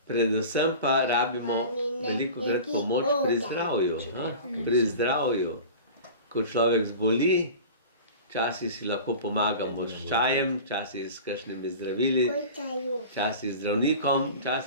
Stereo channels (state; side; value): inverted; both; correlation -0.36